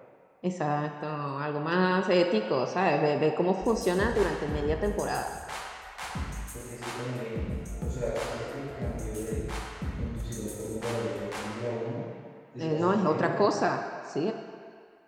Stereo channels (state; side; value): identical; both; correlation 1.00